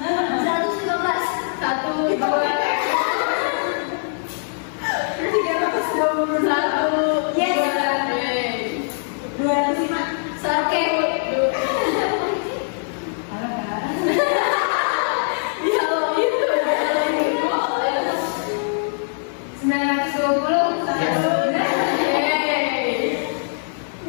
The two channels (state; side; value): silent; right; 64 dB below the other